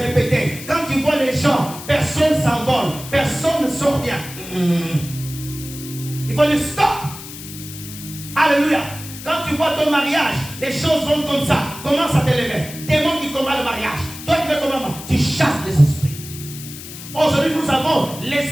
Quand tu vois les gens, personne s'envole, personne ne sort bien. Il faut dire stop. Alléluia. Quand tu vois ton mariage, les choses vont comme ça, commence à t'élever. Démon qui combat le mariage. Toi tu fais comment? Tu chasses les esprits. Aujourd'hui, nous avons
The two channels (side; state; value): left; noise; hiss, 13 dB below the sound